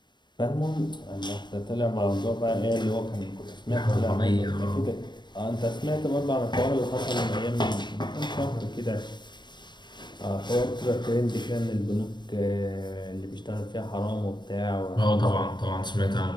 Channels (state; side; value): late; right; 0.22 ms